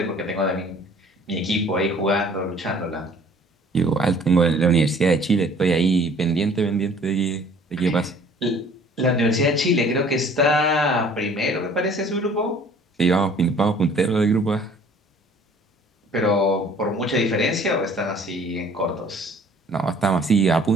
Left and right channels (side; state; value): both; normal; correlation 0.53